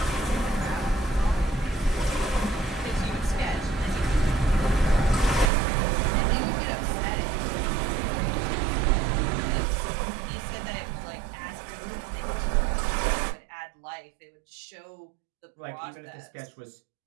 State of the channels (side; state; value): left; drops out; at 5.5 s